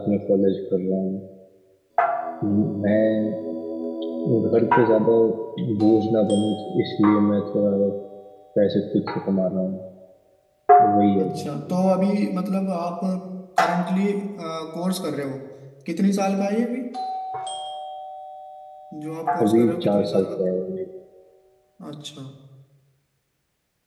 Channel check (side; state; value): both; identical; correlation 1.00